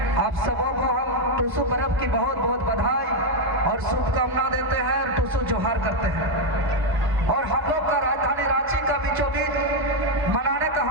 आप सबों को हम टूसू पर्व की बहुत बहुत बधाई और शुभकामना देते हैं और टूसू जोहार करते हैं। और हम लोग का राजधानी रांची का बीचों बीच मनाने का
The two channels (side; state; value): left; late; 1.0 ms